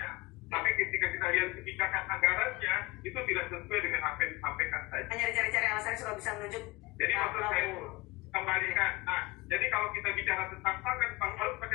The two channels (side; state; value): right; quieter; 23.0 dB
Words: Tapi ketika kita lihat kebijakan anggarannya, itu tidak sesuai dengan apa yang disampaikan tadi. Hanya dicari-cari alasannya supaya bisa menunjuk. Jadi maksud saya itu kembalikan. Nah, jadi kalau kita bicara tentang pangan harus